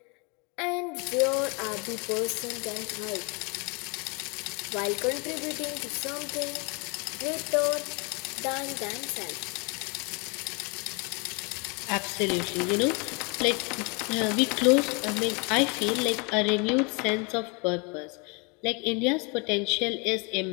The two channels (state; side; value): quieter; right; 31.6 dB